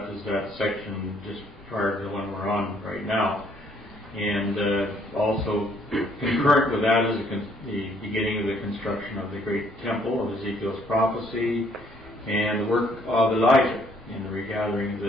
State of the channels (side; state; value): both; normal; correlation 0.66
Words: is that section just prior to the one we're on right now. And also concurrent with that is the beginning of the construction of the great temple of Ezekiel's prophecy, and the work of Elijah in the regathering of